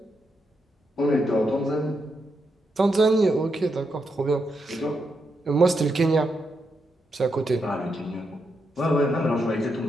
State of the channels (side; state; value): both; normal; correlation 0.83